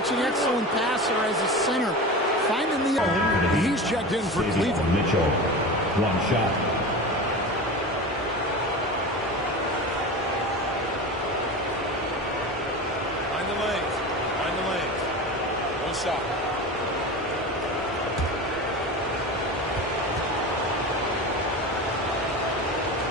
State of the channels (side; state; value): both; normal; correlation 0.29